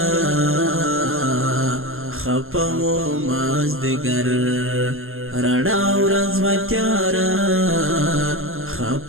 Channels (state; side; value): late; left; 0.61 ms